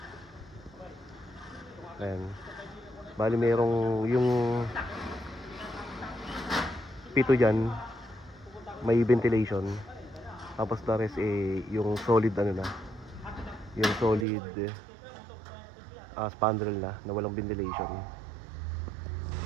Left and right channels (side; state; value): left; drops out; at 14.2 s